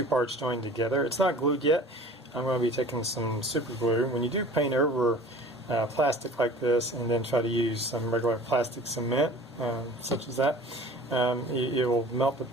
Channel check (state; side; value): normal; both; correlation 0.44